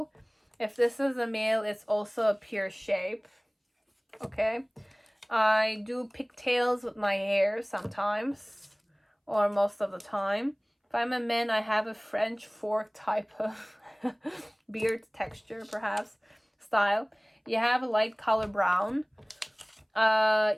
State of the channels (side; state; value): both; identical; correlation 1.00